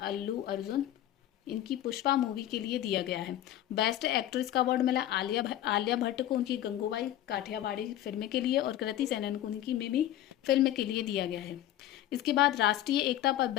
इनकी पुष्पा मूवी के लिए दिया गया है। बेस्ट एक्ट्रेस का अवार्ड मिला आलिया भट्ट को उनकी गंगूबाई काठियावाड़ी फिल्म के लिए और कृति सेनन को उनकी मिमी फिल्म के लिए दिया गया है। इसके बाद राष्ट्रीय एकता पर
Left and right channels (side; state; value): right; quieter; 12.8 dB